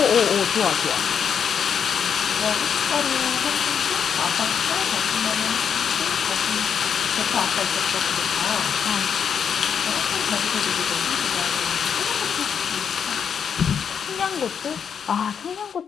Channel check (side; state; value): right; quieter; 7.4 dB